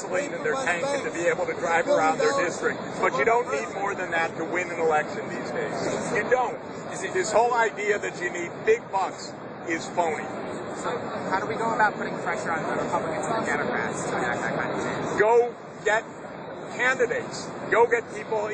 in their tank and to be able to drive around their district. But you don't need more than that to win an election these days. You don't. This whole idea that you need big bucks is phony. So how do we go about putting pressure on the Republicans and the Democrats to enact that kind of change? Go get candidates. Go get people,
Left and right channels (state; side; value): identical; both; correlation 1.00